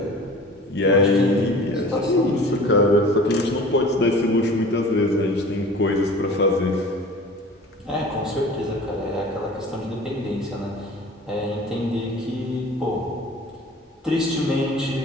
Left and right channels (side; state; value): both; normal; correlation 0.42